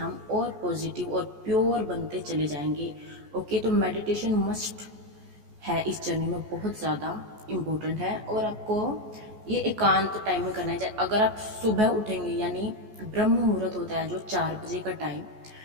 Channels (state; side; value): late; left; 14 ms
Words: और पॉजिटिव और प्योर बनते चले जाएंगे। ओके, तो मेडिटेशन मस्ट है इस जर्नी में, बहुत ज़्यादा इम्पोर्टेंट है। और आपको ये एकांत टाइम में करना है। अगर आप सुबह उठेंगे, यानी ब्रह्म मुहूर्त होता है जो 4 बजे का टाइम,